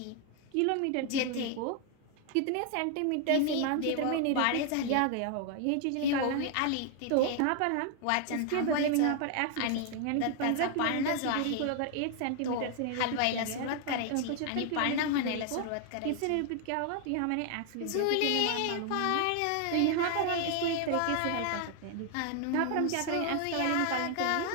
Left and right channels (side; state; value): both; different; correlation 0.00